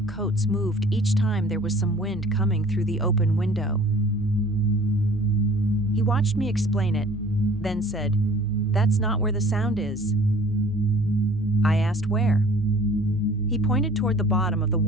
coats moved each time there was some wind coming through the open window. He watched me explain it, then said, "That's not where the sound is." I asked where. He pointed toward the bottom of the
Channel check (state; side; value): normal; both; correlation 0.50